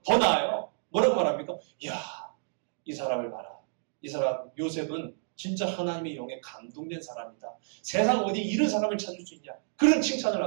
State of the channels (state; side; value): silent; left; digital silence